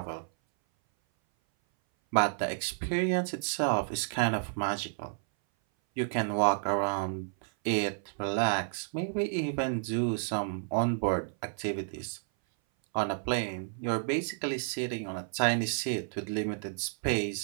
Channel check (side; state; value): left; silent; 57 dB below the other